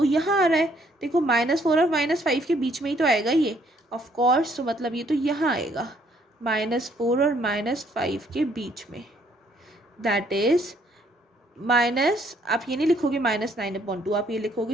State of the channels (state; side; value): normal; both; correlation 0.66